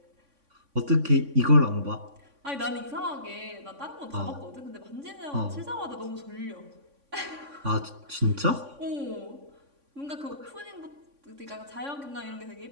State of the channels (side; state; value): left; late; 3.5 ms